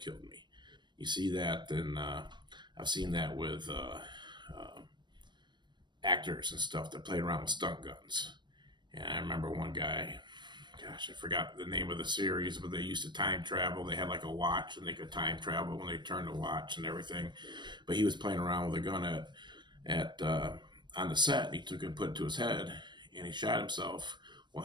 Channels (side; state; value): left; late; 0.22 ms